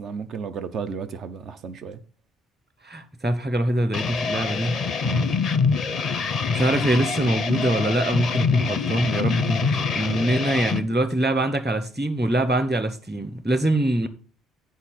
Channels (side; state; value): both; normal; correlation 0.74